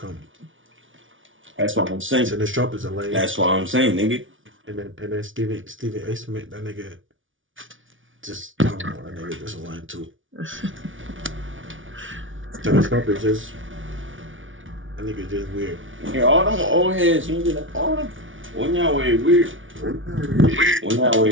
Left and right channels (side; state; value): left; late; 0.57 ms